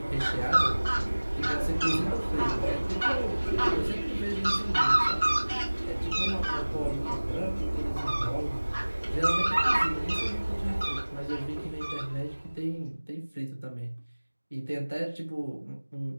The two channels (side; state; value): both; inverted; correlation -1.00